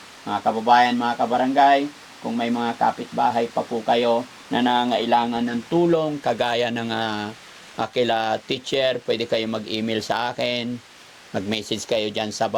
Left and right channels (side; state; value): both; identical; correlation 1.00